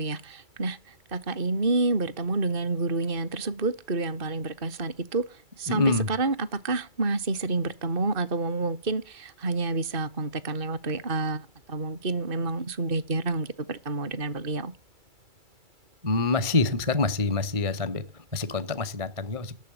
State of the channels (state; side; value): late; left; 2.3 ms